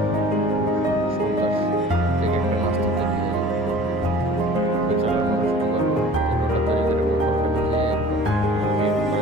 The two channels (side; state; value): both; normal; correlation 0.46